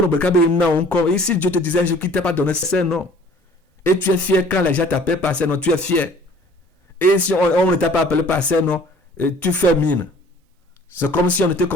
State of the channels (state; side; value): normal; both; correlation 0.52